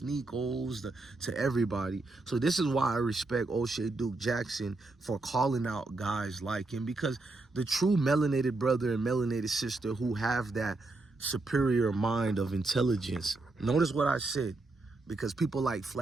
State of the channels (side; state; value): left; quieter; 3.2 dB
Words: to everybody. So this is why I respect O'Shea Duke Jackson for calling out guys like him, because the true melanated brother and melanated sister who have that superior mind of intelligence, notice what I said, because people like